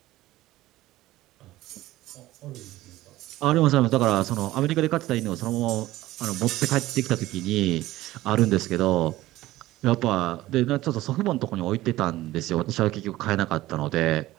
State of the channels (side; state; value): left; quieter; 16.5 dB